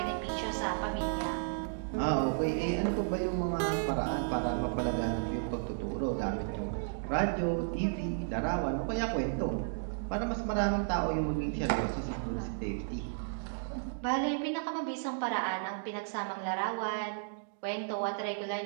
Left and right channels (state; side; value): silent; left; digital silence